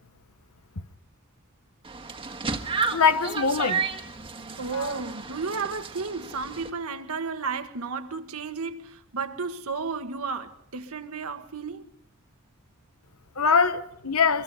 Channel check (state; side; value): normal; both; correlation -0.13